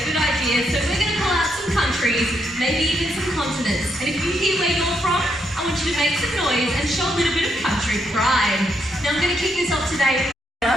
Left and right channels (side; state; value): both; normal; correlation 0.78